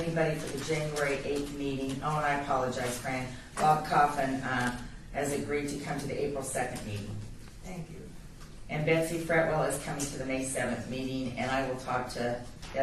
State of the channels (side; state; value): both; identical; correlation 1.00